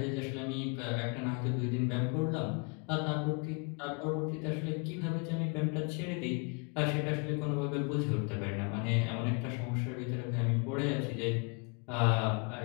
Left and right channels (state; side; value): quieter; right; 34.7 dB